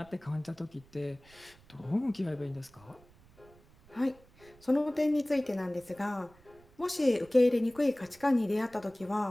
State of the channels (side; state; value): right; noise; rumble, 26 dB below the sound